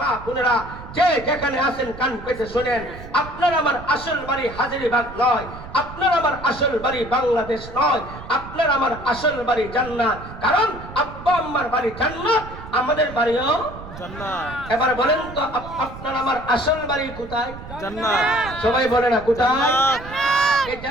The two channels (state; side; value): noise; right; rumble, 14 dB below the sound